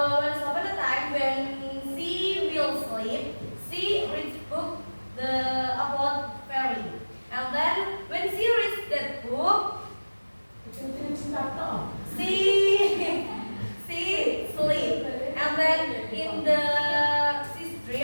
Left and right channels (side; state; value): both; inverted; correlation -1.00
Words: upon a time, when she will sleep, she reads book about fairy, and then when she reads that book, she sleep, and then in the she